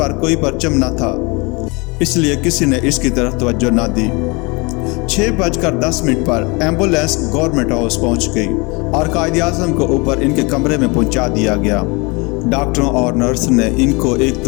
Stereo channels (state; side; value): quieter; right; 28.2 dB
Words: कोई परचम न था, इसलिए किसी ने इसकी तरफ तवज्जो न दी। 6:10 पर एम्बुलेंस गवर्नमेंट हाउस पहुंच गई और कायद-ए-आज़म को ऊपर इनके कमरे में पहुंचा दिया गया। डॉक्टरों और नर्स ने इनको एक